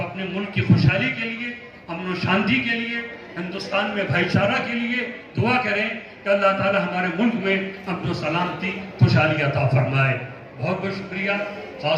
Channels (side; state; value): both; identical; correlation 1.00